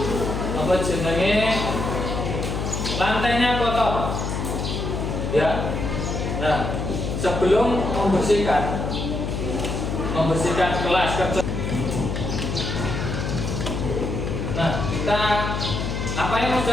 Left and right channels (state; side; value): noise; left; hum, 2 dB below the sound